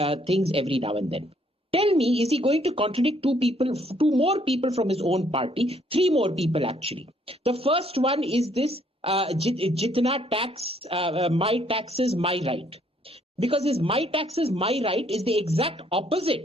things every now and then. Tell me, is he going to contradict two more people from his own party? 3 more people, actually. The first one is this, Jitna tax, my taxes, my right. Because his my taxes, my right is the exact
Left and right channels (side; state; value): both; normal; correlation 0.66